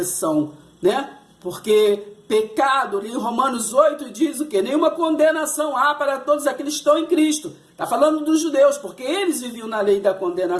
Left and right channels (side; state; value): both; identical; correlation 1.00